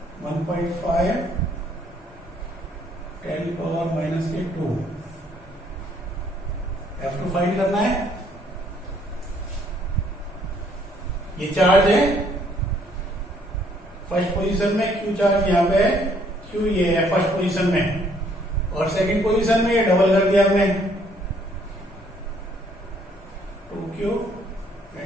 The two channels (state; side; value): normal; both; correlation 0.65